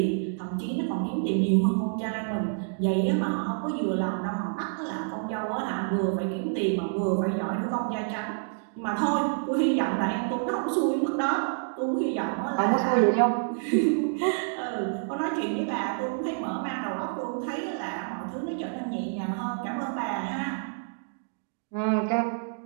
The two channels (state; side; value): silent; left; digital silence